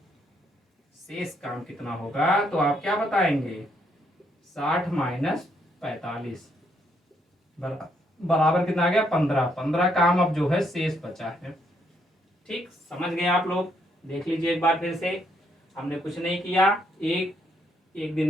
काम कितना होगा तो आप क्या बताएंगे, 60 माइनस 45 बराबर कितना आ गया, 15। 15 काम अब जो है शेष बचा है। ठीक, समझ गए आप लोग। देख लीजिए एक बार फिर से, हमने कुछ नहीं किया। एक दिन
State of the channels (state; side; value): normal; both; correlation 0.73